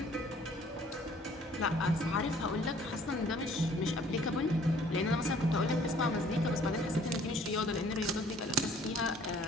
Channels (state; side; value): normal; both; correlation 0.57